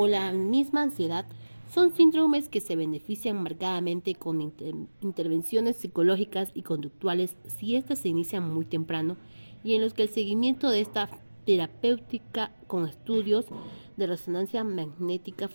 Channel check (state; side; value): inverted; both; correlation -1.00